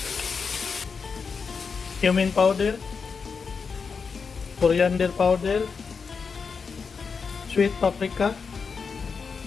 cumin powder, coriander powder, sweet paprika,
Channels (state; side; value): quieter; right; 5.4 dB